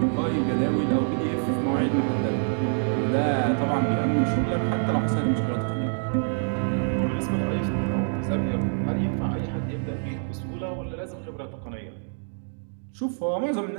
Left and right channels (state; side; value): silent; left; digital silence